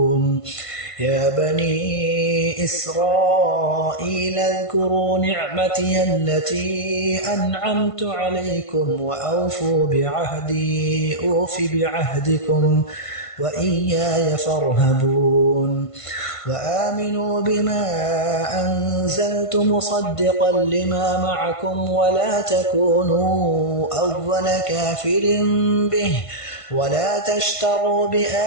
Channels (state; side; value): late; right; 1.5 ms